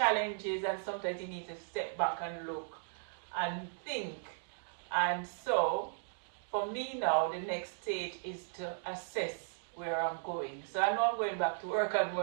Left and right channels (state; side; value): silent; left; digital silence